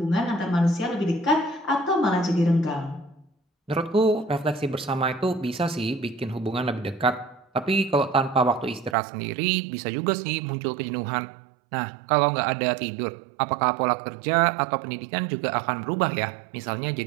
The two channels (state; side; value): drops out; left; at 9.0 s